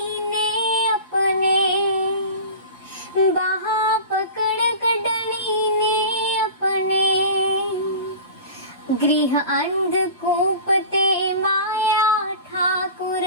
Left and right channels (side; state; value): both; inverted; correlation -0.35